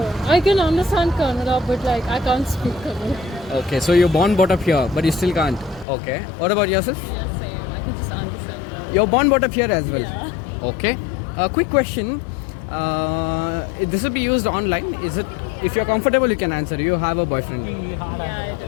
I can understand Kannada, but like I can't speak Kannada. Okay, so you're born, brought up here, but you still can't. Okay. What about yourself? Yeah, same. I can just understand. You're born, brought up here as well. Yeah. Okay. A quick question. This will be used online. Is it? If you're comfortable, you can answer. You have a boyfriend. Yeah, I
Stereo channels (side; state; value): right; drops out; at 5.9 s